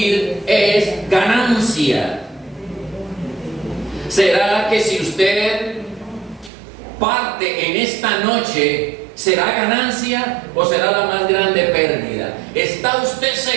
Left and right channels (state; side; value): drops out; left; at 6.5 s